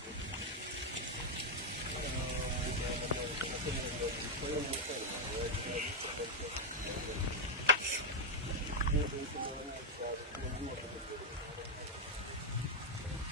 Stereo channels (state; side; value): normal; both; correlation -0.02